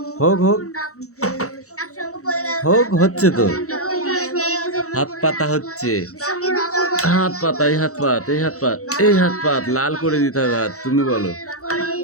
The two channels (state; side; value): late; right; 0.65 ms